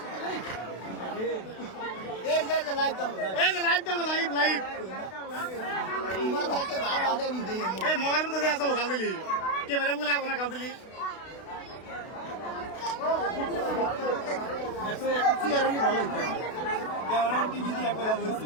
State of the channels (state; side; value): late; right; 32 ms